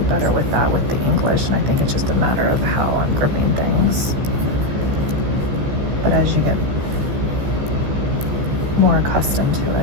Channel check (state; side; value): late; left; 15 ms